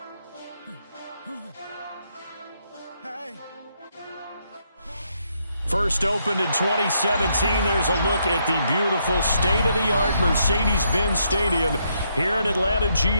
Hey. First opened in 2017, there's a look at the beautiful state-of-the-art Mercedes-Benz Stadium here in Atlanta,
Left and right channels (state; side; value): inverted; both; correlation -0.76